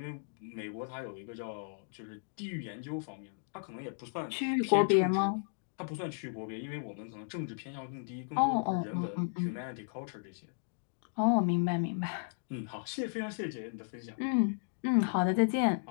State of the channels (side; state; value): right; silent; digital silence